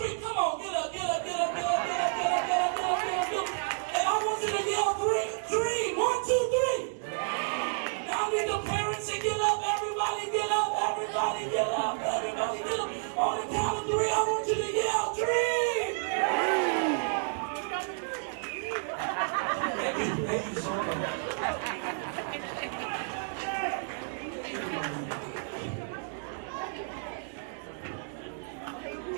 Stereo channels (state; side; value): silent; left; digital silence